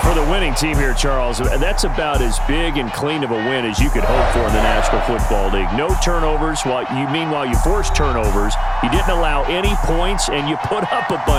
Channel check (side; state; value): both; identical; correlation 1.00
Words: For the winning team here, Charles, that's about as big and clean of a win as you could hope for in the National Football League. No turnovers. Meanwhile, you forced turnovers. You didn't allow any points, and you put up a